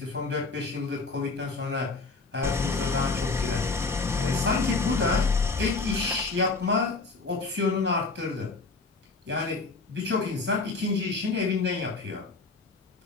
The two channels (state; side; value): quieter; right; 3.9 dB